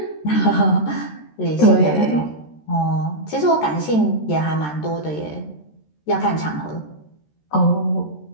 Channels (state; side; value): late; right; 13 ms